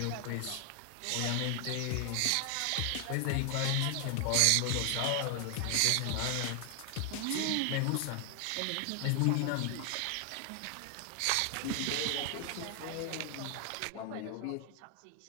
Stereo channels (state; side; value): different; both; correlation 0.00